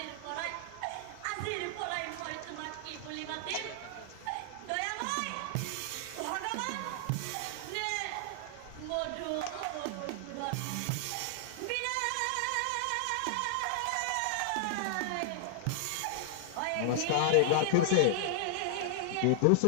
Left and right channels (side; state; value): both; different; correlation -0.01